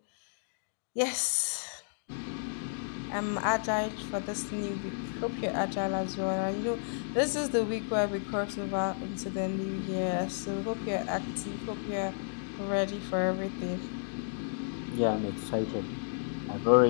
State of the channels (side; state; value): right; silent; digital silence